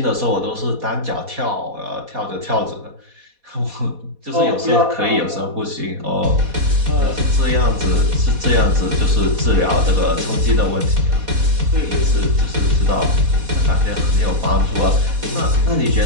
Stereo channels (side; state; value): left; late; 4.1 ms